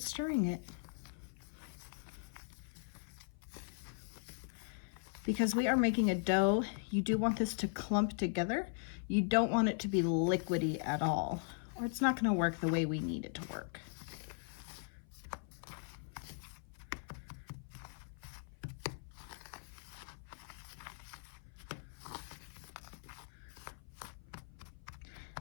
stirring it. Because we are making a dough, you do want this to clump together. You don't want it to be liquidy at all, or it's not going to work the way we need it to work.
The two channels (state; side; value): silent; right; 52 dB below the other